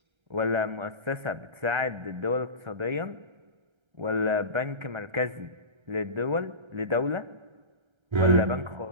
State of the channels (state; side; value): late; left; 1.3 ms